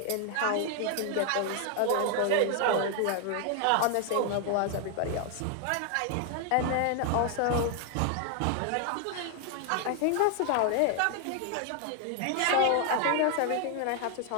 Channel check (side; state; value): both; different; correlation 0.00